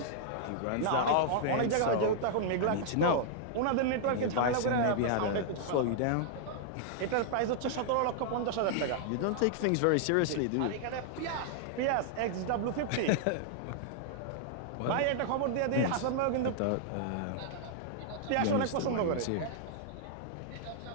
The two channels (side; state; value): both; different; correlation -0.01